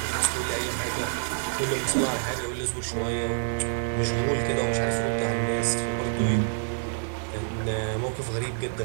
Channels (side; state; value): left; silent; digital silence